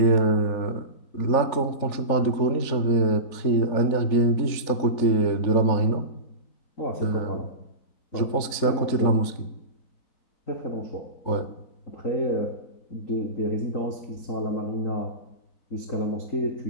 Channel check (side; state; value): right; late; 3.5 ms